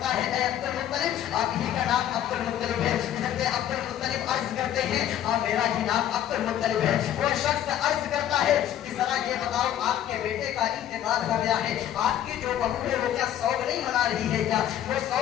ہے اے عبد المطلب آپ ہی کا نام عبد المطلب ہے؟ حضرت عبد المطلب عرض کرتے ہیں ہاں میرا ہی نام عبد المطلب ہے۔ وہ شخص عرض کرتا ہے کہ ذرا یہ بتاؤ آپ کے بیٹے کا انتقال ہو گیا ہے، آپ کی جو بہو ہے وہ کیا سوگ نہیں منا رہی ہے کیا؟ وہ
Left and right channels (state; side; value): quieter; right; 11.2 dB